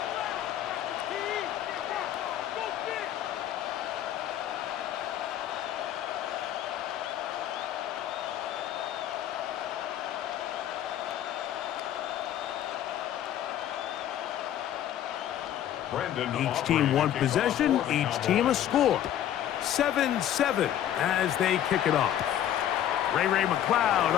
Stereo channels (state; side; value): quieter; right; 11.2 dB